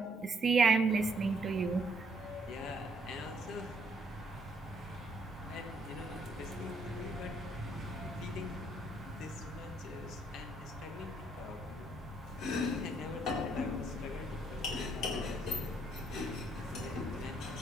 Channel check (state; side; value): normal; both; correlation 0.69